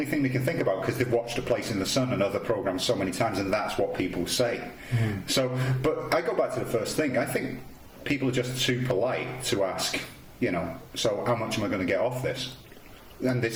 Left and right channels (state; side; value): identical; both; correlation 1.00